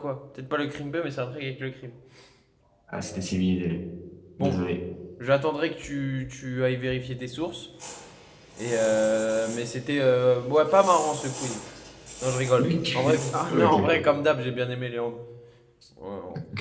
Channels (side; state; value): both; identical; correlation 1.00